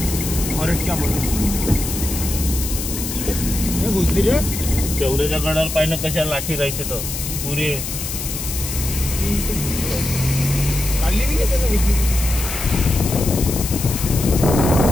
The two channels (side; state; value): left; noise; hiss, 6 dB below the sound